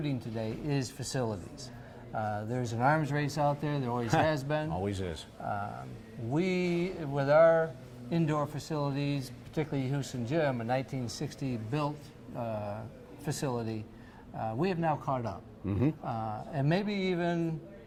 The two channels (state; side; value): identical; both; correlation 1.00